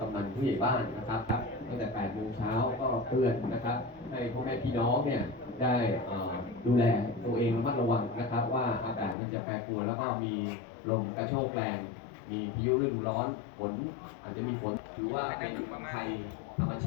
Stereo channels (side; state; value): right; drops out; at 9.2 s